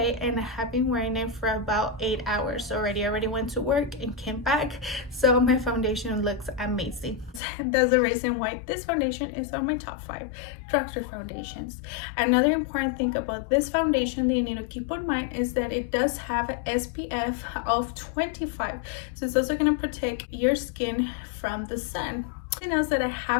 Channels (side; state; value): right; drops out; at 7.4 s